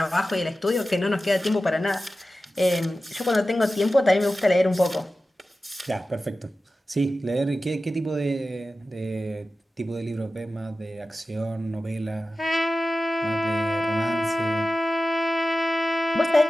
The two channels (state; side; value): normal; both; correlation 0.94